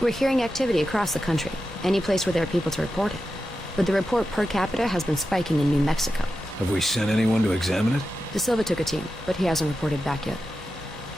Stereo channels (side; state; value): both; normal; correlation 0.90